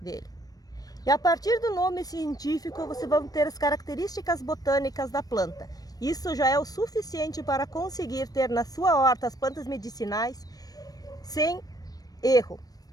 dele. E a partir do nome científico, você vai ter as características botânicas da planta. Isso já é o suficiente para conseguir ter na sua horta as plantas medicinais sem erro.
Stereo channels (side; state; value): right; late; 0.18 ms